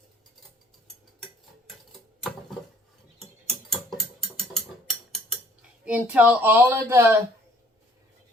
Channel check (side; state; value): both; normal; correlation 0.59